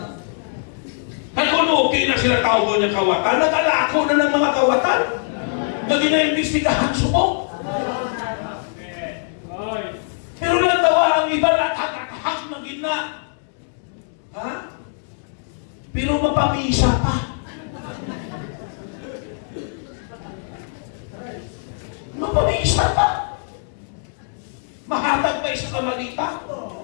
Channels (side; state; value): right; silent; digital silence